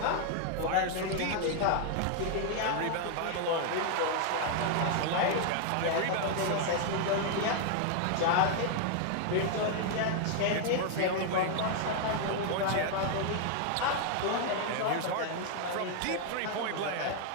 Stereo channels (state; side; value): different; both; correlation 0.00